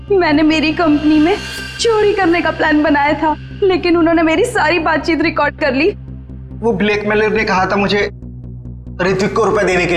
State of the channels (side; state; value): both; identical; correlation 1.00